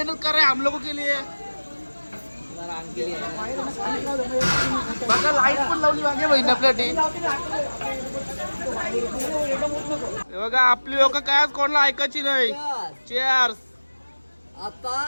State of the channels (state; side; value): inverted; both; correlation -1.00